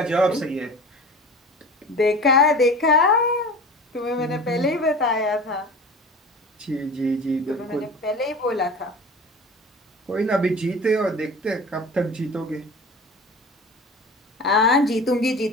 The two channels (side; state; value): both; normal; correlation 0.37